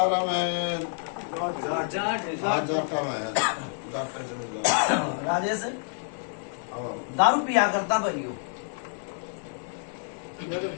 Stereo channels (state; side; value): silent; right; 59 dB below the other